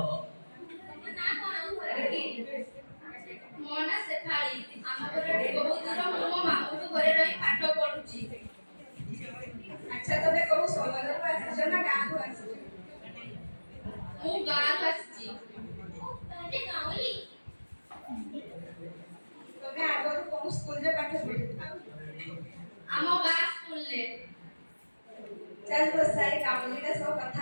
ମୋ ନାଁ ସେଠାଳି। ଆମ ଘରଟି ବହୁତ ଦୂର। ମୁଁ ମୋ ମାମୁଁଙ୍କ ଘରେ ରହି ପାଠ ପଢୁଛି। ଆଚ୍ଛା, ତମେ କୋଉ ସହରରୁ ଆସିଛ ନା ଗାଁରୁ ଆସିଛ? ମୁଁ ଗାଁରୁ ଆସିଛି। ତାହେଲେ ଗାଉଁଲି। ତମେ ଆଗରୁ କୋଉ ସ୍କୁଲରେ ପାଠ ପଢିଛ? ଆମ ଗାଁ ସ୍କୁଲରେ। ଚାଲ ବସା, ଏଇ ଗାଉଁଲିଟା ସହ କଥା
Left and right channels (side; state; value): both; inverted; correlation -1.00